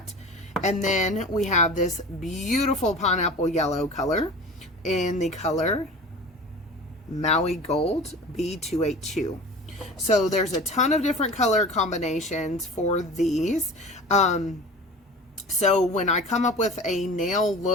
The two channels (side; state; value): both; normal; correlation 0.37